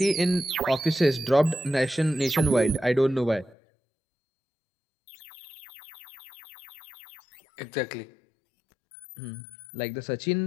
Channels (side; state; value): right; drops out; at 3.6 s